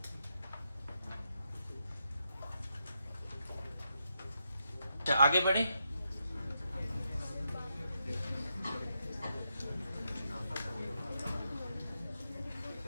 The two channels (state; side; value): inverted; both; correlation -0.83